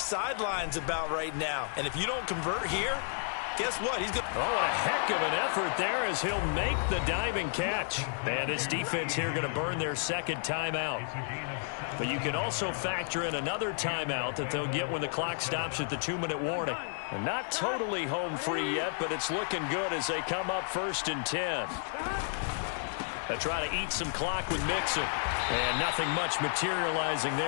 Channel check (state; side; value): silent; right; digital silence